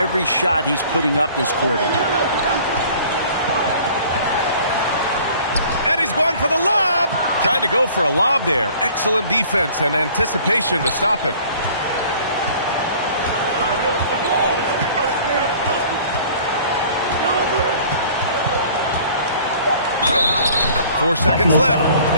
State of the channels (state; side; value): inverted; both; correlation -0.51